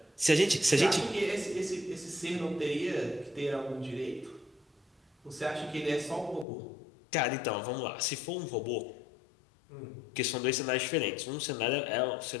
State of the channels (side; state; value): right; drops out; at 6.5 s